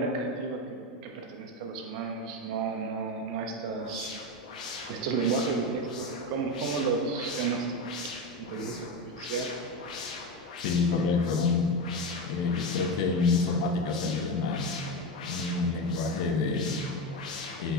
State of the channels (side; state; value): both; normal; correlation 0.17